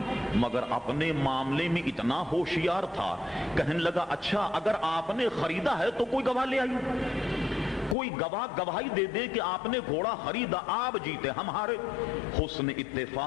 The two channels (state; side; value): drops out; right; at 8.0 s